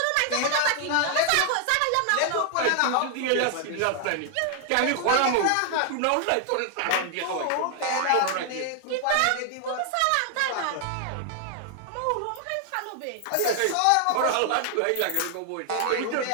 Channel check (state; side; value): different; both; correlation 0.00